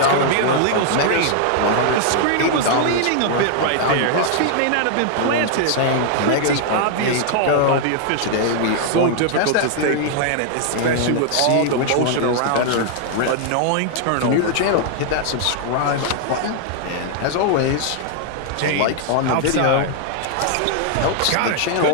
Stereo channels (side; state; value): both; different; correlation 0.00